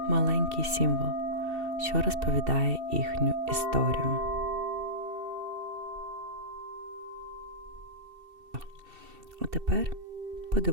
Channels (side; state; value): left; late; 2.7 ms